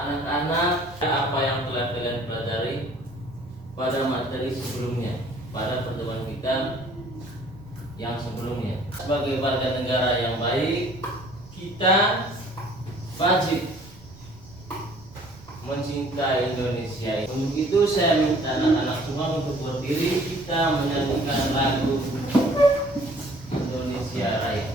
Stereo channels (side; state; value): right; noise; rumble, 23 dB below the sound